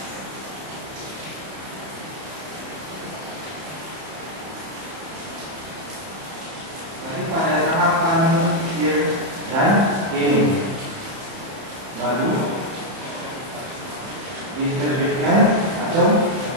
Tapi pada tahapan year dan ini baru diterbitkan atau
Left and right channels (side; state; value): left; late; 31 ms